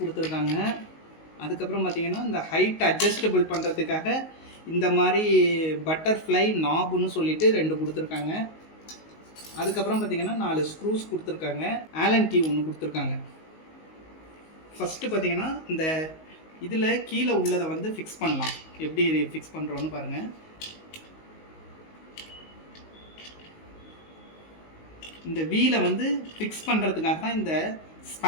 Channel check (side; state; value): right; late; 19 ms